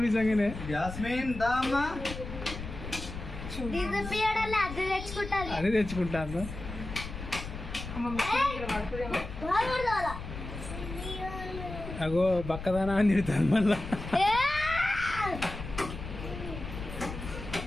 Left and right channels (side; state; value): left; noise; rumble, 9 dB below the sound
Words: నిజంగానే. జాస్మిన్ దా అమ్మా. అదే తెచ్చుకుంటాను. అగో బక్కదానా అని తిడతాను మళ్ళా.